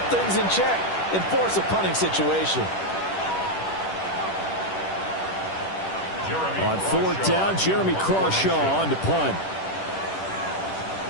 things in check and force a punting situation. On 4th down, Jeremy Crawshaw on to punt.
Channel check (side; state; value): right; late; 10 ms